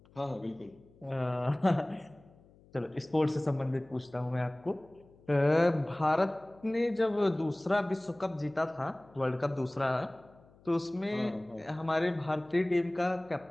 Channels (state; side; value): noise; left; hum, 27 dB below the sound